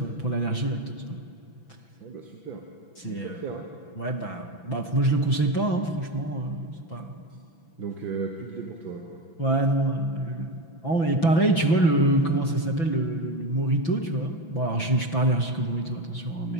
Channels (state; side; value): late; right; 6.0 ms